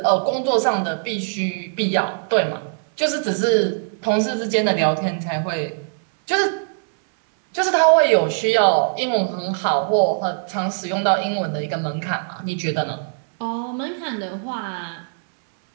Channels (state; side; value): silent; left; 65 dB below the other